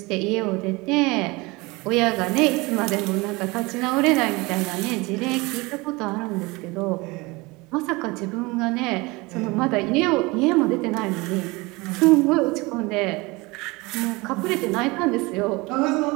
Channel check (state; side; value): quieter; left; 24.0 dB